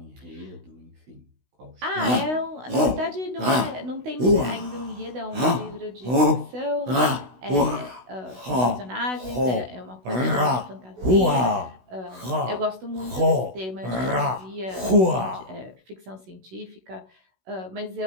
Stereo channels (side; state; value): left; late; 16 ms